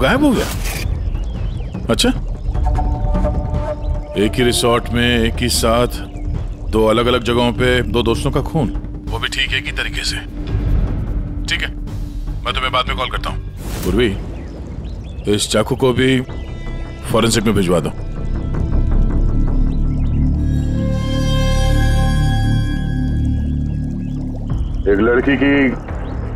हो गया? अच्छा, एक ही रिसोर्ट में एक ही साथ दो अलग अलग जगहों पे दो दोस्तों का खून, वो भी ठीक एक ही तरीके से। ठीक है, मैं तुम्हें बाद में कॉल करता हूँ। पूर्वी, इस चाकू को भी फॉरेंसिक में भिजवा दो। एक लड़की की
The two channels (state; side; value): identical; both; correlation 1.00